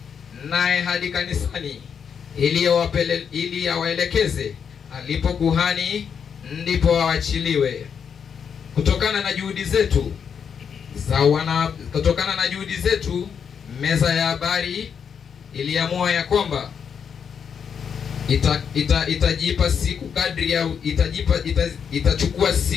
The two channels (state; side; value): quieter; right; 7.1 dB